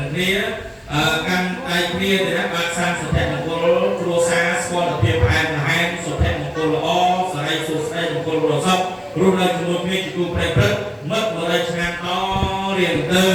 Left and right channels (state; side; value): identical; both; correlation 1.00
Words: ឹងគ្នាកាន់ដៃគ្នាទៅណាបានសាងសុភមង្គលគ្រួសារស្គាល់ភាពផ្អែមល្ហែមសុភមង្គលល្អសិរីសួស្តីមង្គលរស័ព្ទរស់នៅជាមួយគ្នាជាគូប្រេងព្រឹកមិត្ត100ឆ្នាំតរៀងទៅ